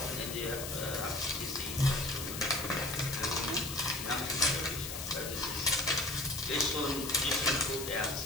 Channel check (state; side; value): noise; left; hiss, 7 dB below the sound